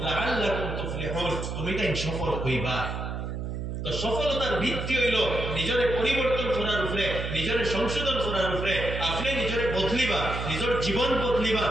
লাআল্লাকুম তুফলিহুন, তুমি তাই সফল হইবা। তো সফলতার ভিত্তি হইল নিজের পরিবর্তন করার উপরে, নিজের সংশোধন করার উপরে। আপনি নিজের বদলিবা, নিজের জীবন বদলিবা,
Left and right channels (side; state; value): right; noise; hum, 4 dB below the sound